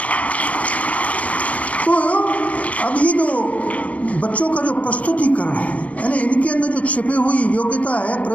तो अब ये जो बच्चों का जो प्रस्तुतिकरण है, यानी इनके अंदर जो छिपी हुई योग्यता है,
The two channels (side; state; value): right; late; 0.067 ms